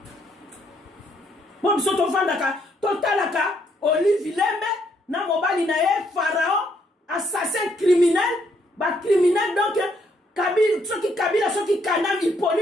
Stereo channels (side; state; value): both; normal; correlation 0.71